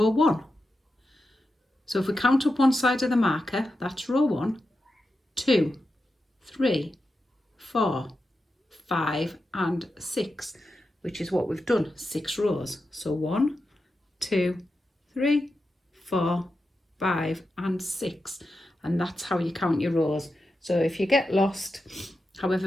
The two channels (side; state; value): both; normal; correlation 0.89